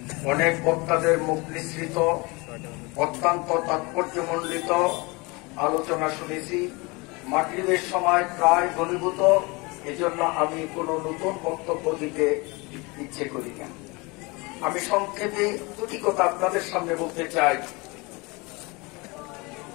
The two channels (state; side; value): quieter; right; 26.3 dB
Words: অনেক বক্তাদের মুখ নিঃসৃত অত্যন্ত তাৎপর্যমণ্ডিত আলোচনা শুনেছি। মাগরিবের সময় প্রায় ঘনীভূত, এজন্য আমি কোনো নতুন বক্তব্য দিতে ইচ্ছে করি না। আমি সংক্ষেপে দুটি কথা আপনাদের সামনে বলতে চাই।